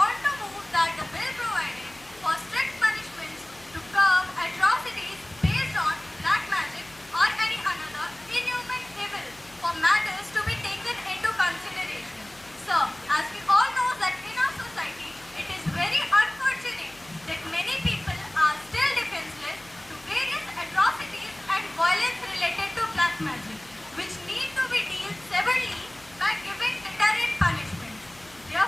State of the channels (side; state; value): left; noise; hum, 27 dB below the sound